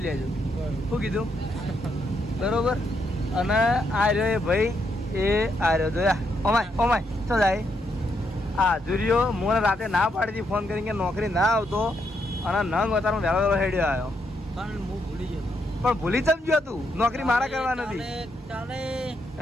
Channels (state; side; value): normal; both; correlation 0.78